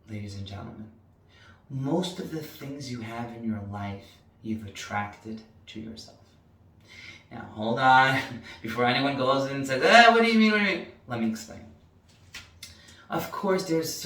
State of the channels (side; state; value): both; identical; correlation 1.00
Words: ladies and gentlemen, most of the things you have in your life, you've attracted to yourself. Now, hold on, before anyone goes in and says, what do you mean, Let me explain. Of course, there's